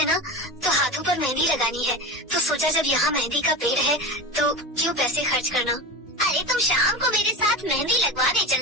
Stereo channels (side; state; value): both; normal; correlation 0.26